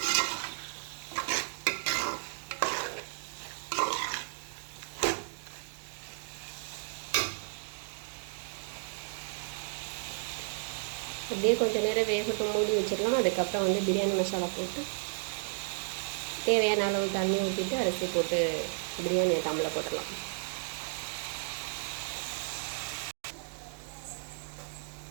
அப்படியே கொஞ்சம் நேரம் வேகட்டும், மூடி வச்சிடலாம். அதுக்கப்புறம் வந்து பிரியாணி மசாலா போட்டு தேவையான அளவு தண்ணி ஊற்றிட்டு அரிசி போட்டு பிரியாணியை தம்மில் போட்டுடலாம்.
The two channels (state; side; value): silent; left; digital silence